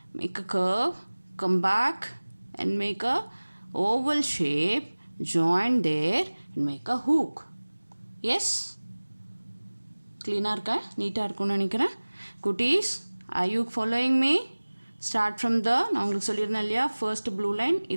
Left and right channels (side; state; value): both; inverted; correlation -1.00